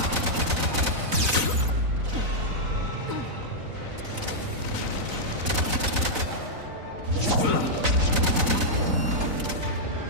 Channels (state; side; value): late; left; 4.0 ms